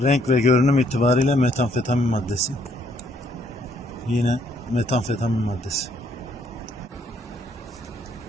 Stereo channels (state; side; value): normal; both; correlation 0.68